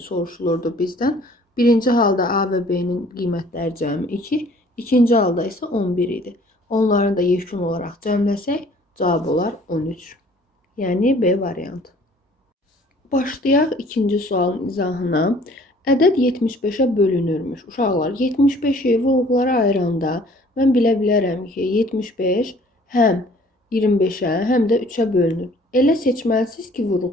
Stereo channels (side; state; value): both; normal; correlation 0.55